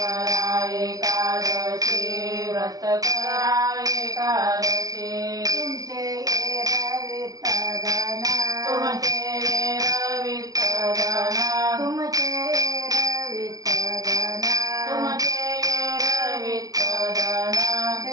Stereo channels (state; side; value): late; left; 0.18 ms